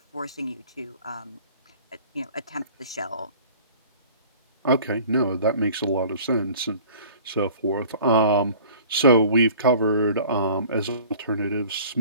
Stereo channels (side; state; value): both; inverted; correlation -0.47